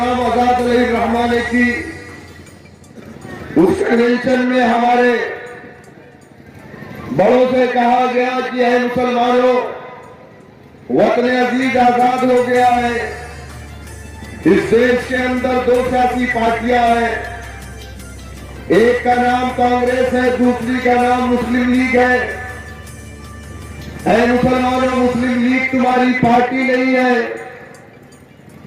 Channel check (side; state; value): both; identical; correlation 1.00